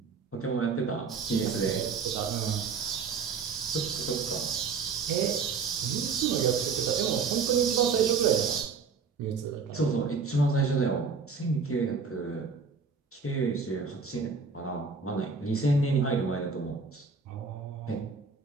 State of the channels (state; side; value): quieter; left; 5.2 dB